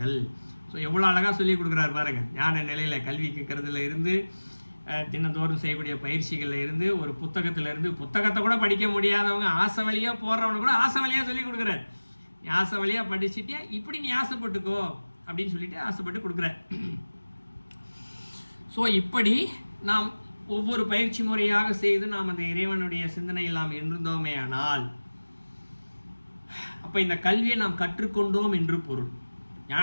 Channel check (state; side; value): inverted; both; correlation -1.00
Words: ஸோ எவ்வளோ அழகாக சொல்லி கொடுக்குறாரு பாருங்க. ஞான நிலையில் கல்வி கேட்கறதுல இருந்து, தினந்தோறும் செய்யக்கூடிய பயிற்சிகளில் இருந்து, ஒரு புத்தகத்திலேருந்து, புத்தகத்தை கூட படிக்க முடியாதவங்க ஆசை வழியாக போடுறவங்க கூட ஆசை வழியாக சொல்லி கொடுக்குறாரு. நீ ஆசை வழியாக படிச்சுட்டே இப்படி நீ ஆசைப்பட்டுக்கோ அப்படின்னு சொல்லிட்டு ஆசைப்பட்டு கொடுக்குற. ஸோ இப்படி நாம் ஒவ்வொரு பயிற்சி முறையாக செய்து நாம் அந்த இறைவனுடைய சிந்தனையில் நாம் இருந்தோமே ஆனால், அப்போ இந்த கல்வியை நாம் கற்றுக்கொண்டோம் என்று பொருள்.